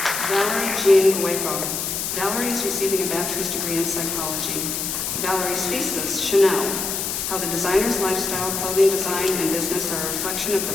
Valerie Jean Hueco. Valerie is receiving a bachelor's degree in psychology. Valerie's thesis, Chanel, How the Designer's Lifestyle, Clothing Design, and Business Are a Reflection of the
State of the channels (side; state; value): left; noise; hiss, 2 dB below the sound